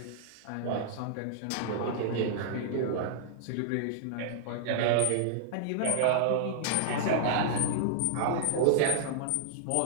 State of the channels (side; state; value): both; different; correlation -0.02